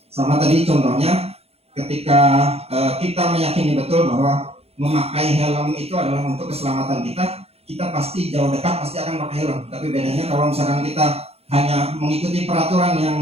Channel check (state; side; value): late; left; 0.29 ms